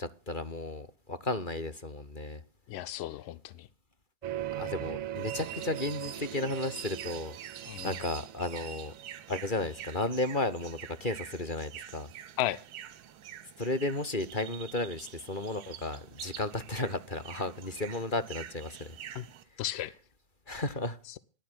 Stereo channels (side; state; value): right; late; 2.4 ms